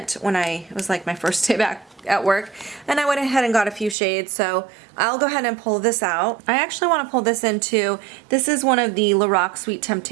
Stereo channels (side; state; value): left; drops out; at 4.0 s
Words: when it was like my first day back at work, and I went ahead and got a few shades, so I'll go ahead and pull this out. I actually want to pull this into, this is one of the Lorac Sweet